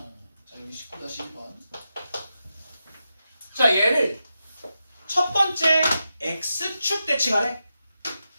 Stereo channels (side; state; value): both; inverted; correlation -0.88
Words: 자, 여기 19-1번. 자, 얘를 첫 번째 x축 대칭하래.